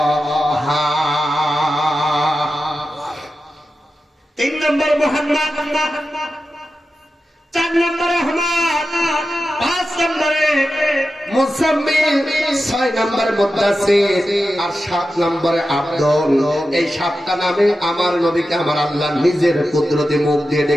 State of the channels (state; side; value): normal; both; correlation 0.92